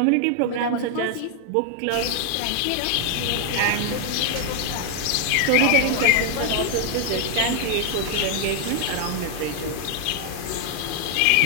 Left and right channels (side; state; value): both; different; correlation 0.00